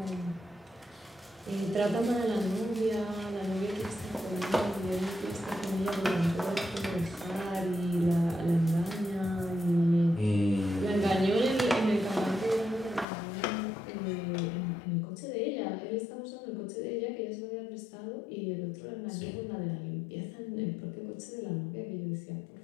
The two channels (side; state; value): right; drops out; at 13.1 s